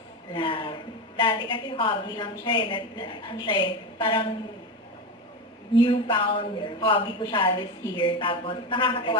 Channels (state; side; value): normal; both; correlation 0.19